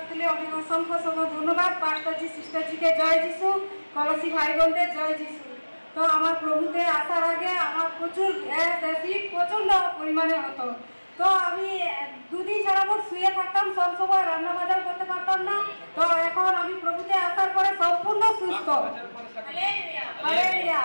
তুলে অনেক অসংখ্য ধন্যবাদ পাস্টারজি সিস্টারজিকে জয় যিশু কলসি ভাই বোনদের জয় যিশু। তো আমার প্রভুতে আসার আগে আমার প্রচুর অ্যাসিড প্রচন্ড পরিমাণে হতো। তো আমি দুদিন যাবত শুয়ে থাকতাম, সব সময় রান্না বাজার করতে পারতাম না। তো এখন আমি প্রভুতে আসার পরে সম্পূর্ণ সুস্থ।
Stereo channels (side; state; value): both; inverted; correlation -1.00